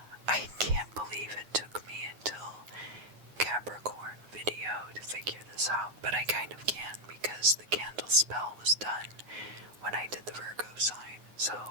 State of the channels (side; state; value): left; late; 9.5 ms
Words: I can't believe it took me until Capricorn video to figure this out, but I kind of can because the candle spell was done when I did the Virgo sign.